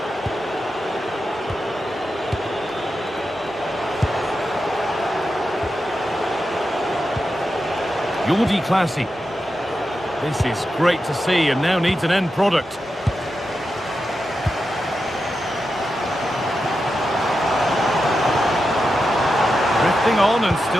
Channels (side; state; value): both; normal; correlation 0.89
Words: Jordi Classy. This is great to see and now needs an end product. Drifting on and